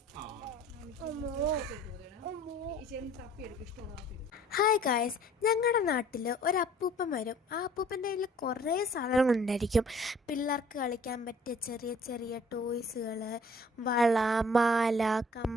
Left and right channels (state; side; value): normal; both; correlation 0.54